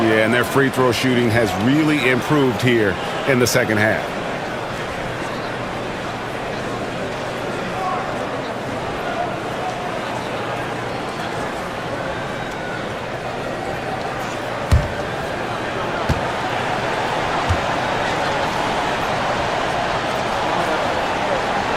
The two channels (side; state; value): both; identical; correlation 1.00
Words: Yeah, and their free throw shooting has really improved here in the second half.